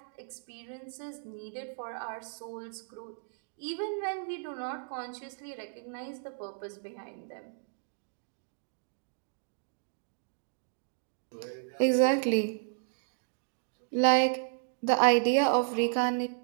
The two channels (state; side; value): silent; left; digital silence